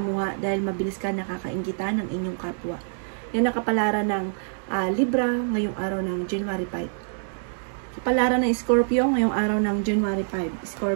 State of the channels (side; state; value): left; silent; digital silence